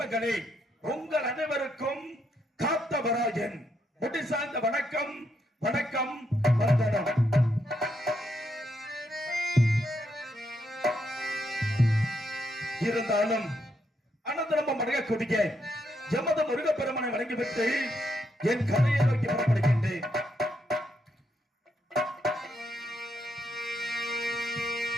உங்கள் அனைவருக்கும் காத்தவராயன் முடி சார்ந்த வணக்கம் வணக்கம் வந்தனம். இருந்தாலும் அனந்தரம்பம் அடங்கக்கூடிய எமது முருகப்பெருமனை வணங்கிவிட்டு என் கதையை நோக்கி புறப்படுகின்றேன்.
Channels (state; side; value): normal; both; correlation 0.78